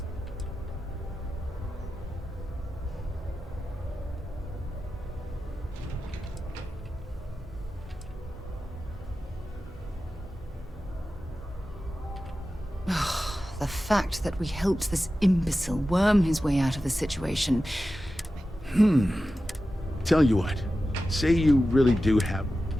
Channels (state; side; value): normal; both; correlation 0.93